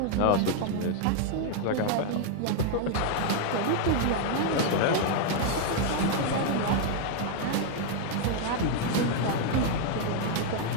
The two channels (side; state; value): both; different; correlation 0.00